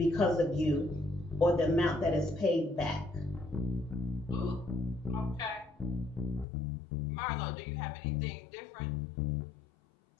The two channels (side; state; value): right; drops out; at 6.5 s